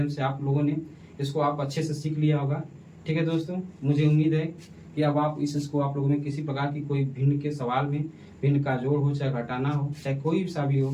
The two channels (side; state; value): both; identical; correlation 1.00